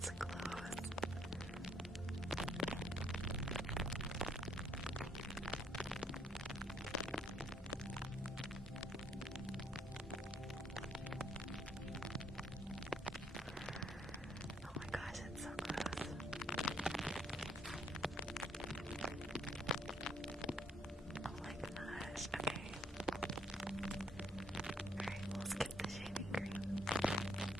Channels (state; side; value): normal; both; correlation 0.69